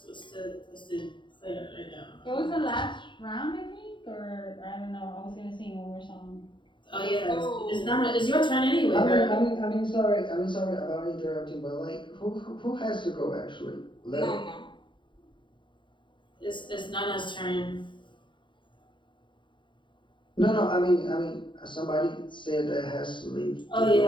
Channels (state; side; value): late; right; 0.23 ms